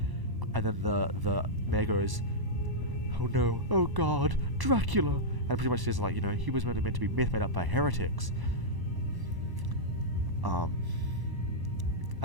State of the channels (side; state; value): left; late; 1.0 ms